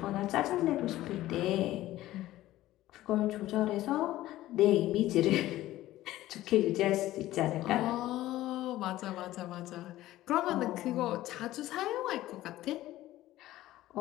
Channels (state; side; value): quieter; right; 15.4 dB